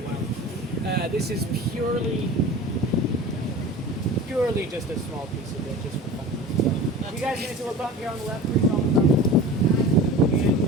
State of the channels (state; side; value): normal; both; correlation 0.36